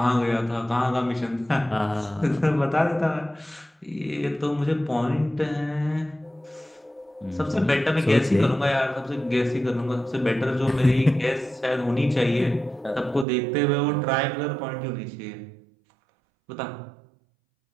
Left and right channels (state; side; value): drops out; left; at 13.2 s